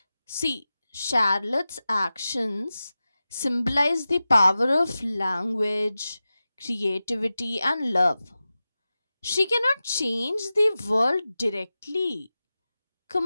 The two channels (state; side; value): inverted; both; correlation -0.95